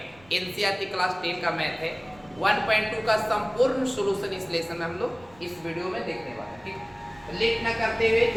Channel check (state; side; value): noise; right; rumble, 26 dB below the sound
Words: एनसीईआरटी क्लास 10 का मैथ है। 1.2 का संपूर्ण सॉल्यूशन इस लेसन में हम लोग इस वीडियो में देखने वाले हैं। ठीक, तो लेट न करते हुए